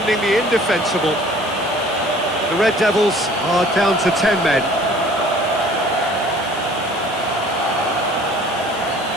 the indefensible. The Red Devils are down to 10 men.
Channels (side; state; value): left; noise; hiss, 19 dB below the sound